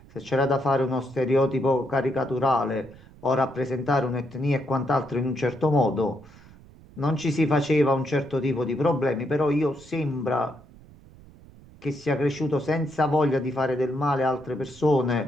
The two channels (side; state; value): right; noise; rumble, 23 dB below the sound